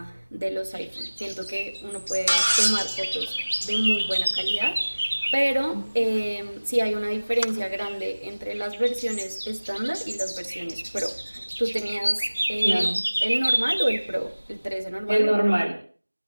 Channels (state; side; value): inverted; both; correlation -1.00